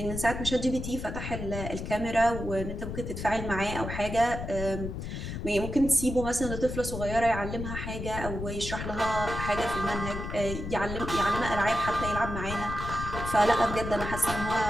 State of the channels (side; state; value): left; noise; rumble, 6 dB below the sound